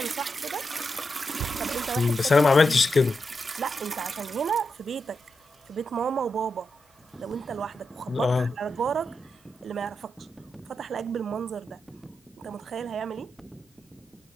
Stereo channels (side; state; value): both; normal; correlation 0.86